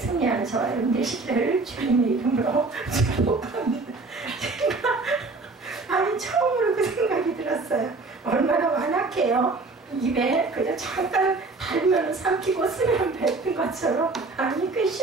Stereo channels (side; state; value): left; quieter; 3.6 dB